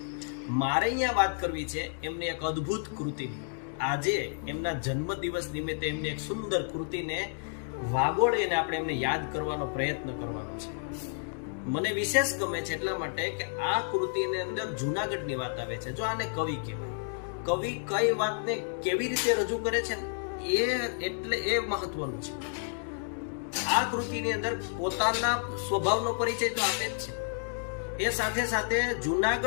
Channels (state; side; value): silent; right; digital silence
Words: મારે અહીંયા વાત કરવી છે એમની એક અદ્ભુત કૃતિની. આજે એમના જન્મદિવસ નિમિત્તે એમની એક સુંદર કૃતિને વાગોળીને આપણે એમને યાદ કરવાનો પ્રયત્ન કરવાનો છે. મને વિશેષ ગમે છે એટલા માટે કે આ કૃતિની અંદર જુનાગઢની વાત આવે છે. જો આને કવિ કહેવાય. કવિ કઈ વાતને કેવી રીતે રજૂ કરે છે એ મહત્વનું છે. આ કૃતિની અંદર પોતાના સ્વભાવનો પરિચય તો આપે જ છે. એ સાથે સાથે